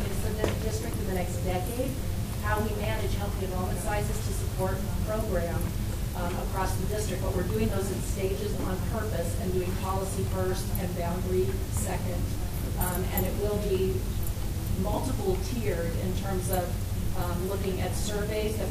kids to the district in the next decade, how we manage healthy enrollment sizes to support the program across the district. But we're doing those in stages on purpose and doing policy first and boundary second. And it will be multiple tiered in terms of looking at surveys that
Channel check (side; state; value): both; identical; correlation 1.00